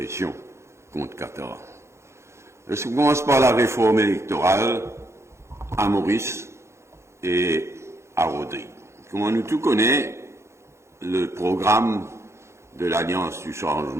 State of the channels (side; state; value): left; late; 0.13 ms